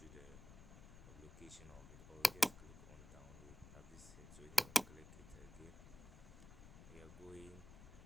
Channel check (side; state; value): left; noise; rumble, 15 dB below the sound